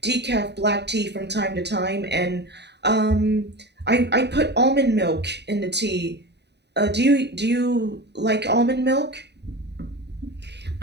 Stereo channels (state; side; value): late; left; 0.49 ms